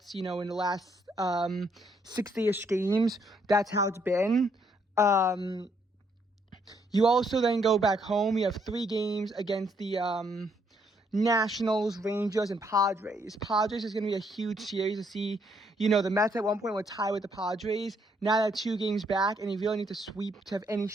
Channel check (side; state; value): both; normal; correlation 0.71